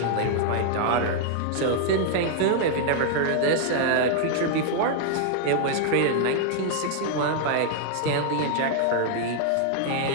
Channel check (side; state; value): both; different; correlation -0.01